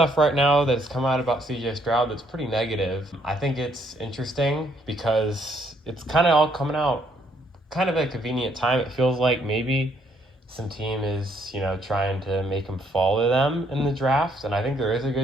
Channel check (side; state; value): both; normal; correlation 0.69